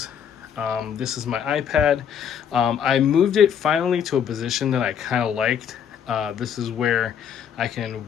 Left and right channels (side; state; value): right; quieter; 8.3 dB